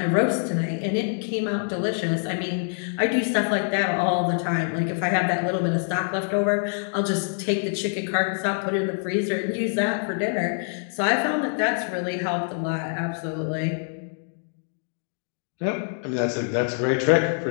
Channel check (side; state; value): right; silent; 62 dB below the other